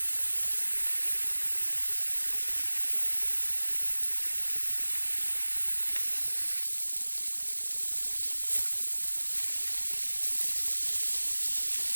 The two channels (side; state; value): both; inverted; correlation -1.00